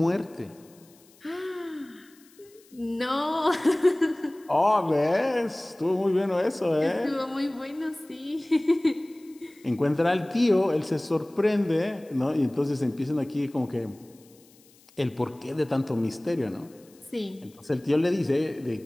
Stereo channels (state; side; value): noise; left; hiss, 28 dB below the sound